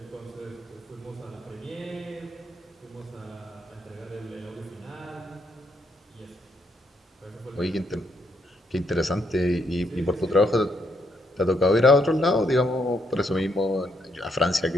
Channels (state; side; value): normal; both; correlation 0.75